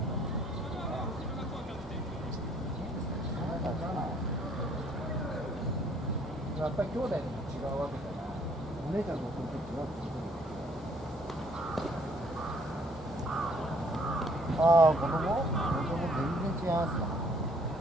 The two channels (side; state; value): both; normal; correlation 0.62